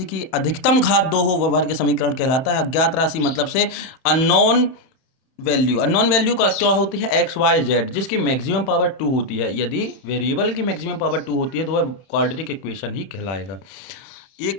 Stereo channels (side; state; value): right; late; 31 ms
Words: की अधिकतम घात 2 हो वह वर्ग समीकरण कहलाता है। अज्ञात राशि मतलब से अननोन वैल्यू। अननोन वैल्यू का क्या होती है? एक्स वाई जेड, जिसकी मैक्सिमम पावर 2 होती है। यदि वेरिएबल की मैक्सिमम पावर 2 होती है तो वह क्वाड्रेटिक इक्वेशन ही कहलाएगा।